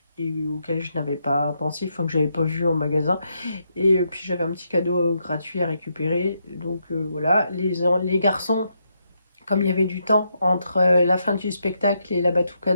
et auquel je n'avais pas pensé, enfin que j'avais pas vu en magasin. Et puis j'avais un petit cadeau gratuit à récupérer. Donc voilà, les garçons, comme il y avait du temps entre la fin du spectacle et la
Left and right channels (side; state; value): both; inverted; correlation -0.80